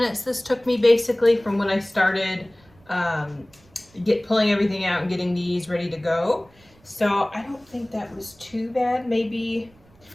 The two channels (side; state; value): right; noise; rumble, 29 dB below the sound